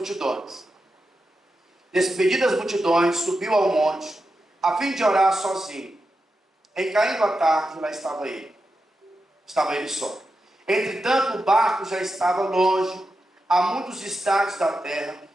Despedidas as multidões, subiu ao monte, a fim de orar sozinho. Em caindo a tarde, lá estava ele. Estava ele só. Entretanto, o barco já estava longe, a muitos estádios da terra,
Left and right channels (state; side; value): normal; both; correlation 0.89